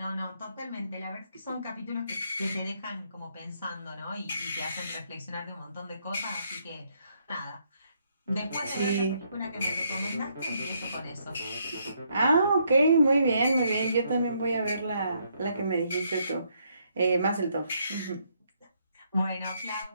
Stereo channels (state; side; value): inverted; both; correlation -0.73